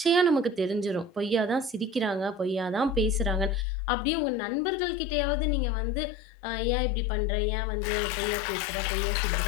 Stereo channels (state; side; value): drops out; right; at 3.7 s